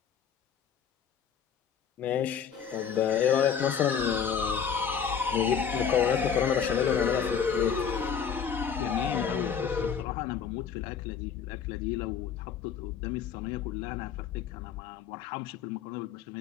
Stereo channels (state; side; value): quieter; right; 7.5 dB